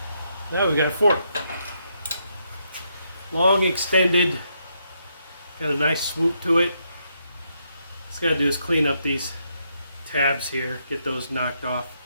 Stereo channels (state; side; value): inverted; both; correlation -0.77